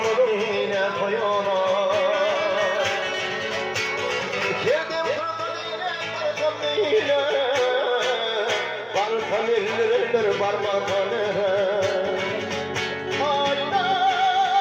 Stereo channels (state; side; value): identical; both; correlation 1.00